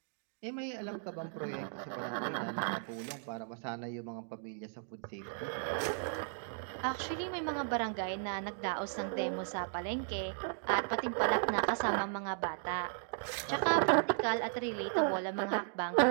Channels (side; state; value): left; silent; digital silence